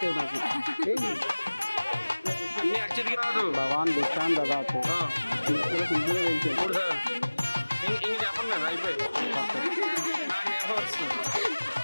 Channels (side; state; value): both; inverted; correlation -1.00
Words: నాకు అన్ని అక్షతికి రాదు. భవాన్ భిక్షాం దదాతు. సింపుల్ గా వేయించాను. మూడు సార్లు ఇంక చెప్పండి. నేను అయిపోయి నాకు నేర్ప వస్తుంది.